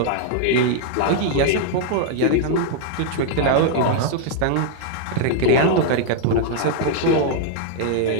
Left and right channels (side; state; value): both; different; correlation 0.00